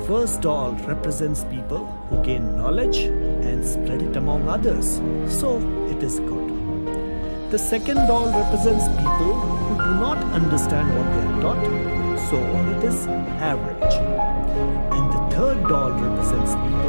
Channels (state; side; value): inverted; both; correlation -1.00